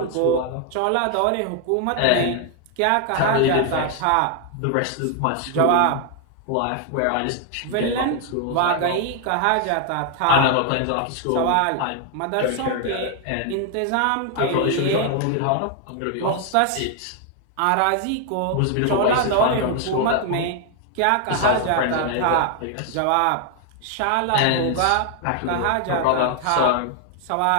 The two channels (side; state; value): both; different; correlation 0.00